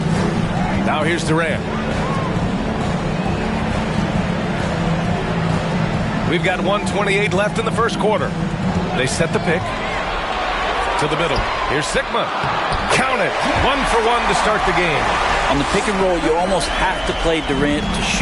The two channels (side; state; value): both; identical; correlation 1.00